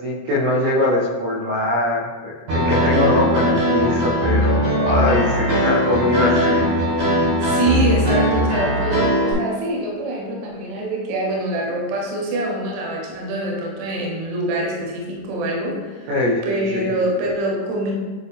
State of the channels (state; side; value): late; left; 26 ms